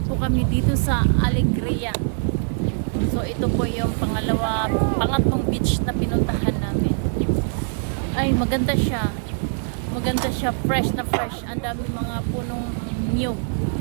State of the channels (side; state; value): left; silent; digital silence